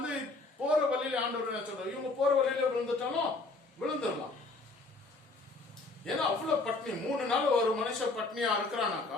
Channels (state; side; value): quieter; right; 3.4 dB